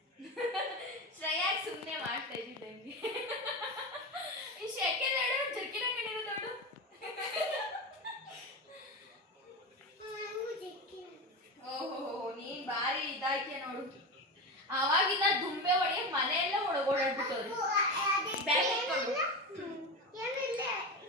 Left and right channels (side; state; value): both; normal; correlation 0.21